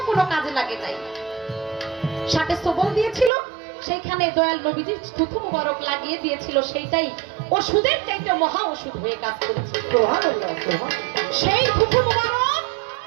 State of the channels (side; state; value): left; drops out; at 3.3 s